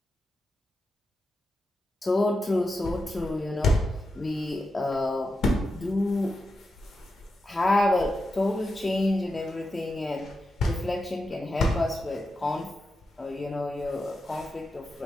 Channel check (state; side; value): normal; both; correlation 0.88